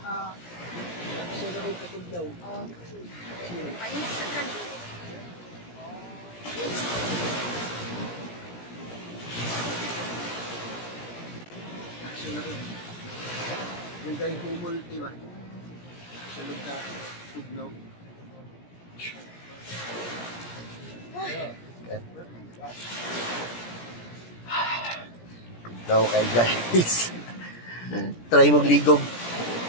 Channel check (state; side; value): late; right; 17 ms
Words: Ah. Action na rin katugnaw. Oh. Painis sa kan. Action na rin. Lugay humol, diba? Action ka tugnaw. Tugnaw kay guys. Try mong ligog.